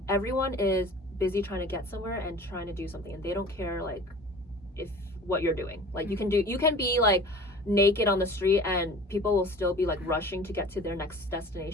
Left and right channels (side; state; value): both; normal; correlation 0.42